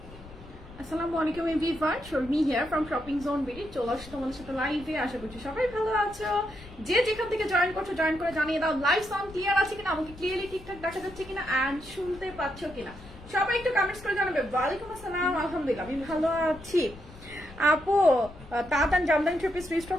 আসসালামু আলাইকুম everyone, Sharmi here from shopping zone BD. চলে আসছি তোমাদের সাথে লাইভে। আশা করছি সবাই ভালো আছো। যে যেখান থেকে জয়েন করছো জয়েন করে জানিয়ে দাও লাইভ সাউন্ড ক্লিয়ার আছে কিনা, আমাকে ক্লিয়ারলি ঠিকঠাক দেখা যাচ্ছে কিনা এন্ড শুনতে পাচ্ছ কিনা। সবাই একটু কমেন্টস করে জানাবে। ওয়ালাইকুম আসসালাম, আলহামদুলিল্লাহ আমি ভালো আছি। আপু তাড়াতাড়ি জামদানি থ্রি পিস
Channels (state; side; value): noise; left; rumble, 18 dB below the sound